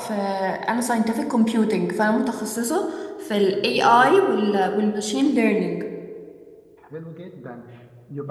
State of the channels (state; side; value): identical; both; correlation 1.00